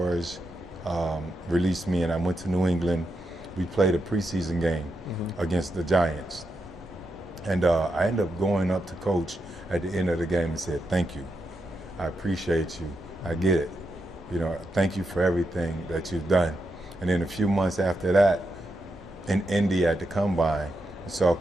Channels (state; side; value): normal; both; correlation 0.84